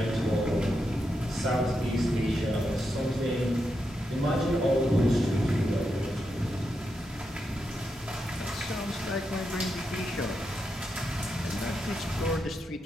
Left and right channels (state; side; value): normal; both; correlation 0.85